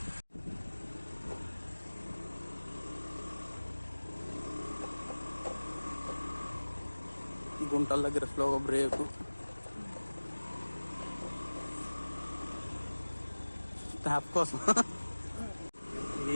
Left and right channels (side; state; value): both; inverted; correlation -1.00